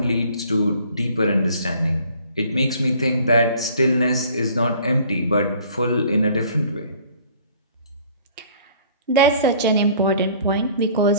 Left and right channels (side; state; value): both; inverted; correlation -0.53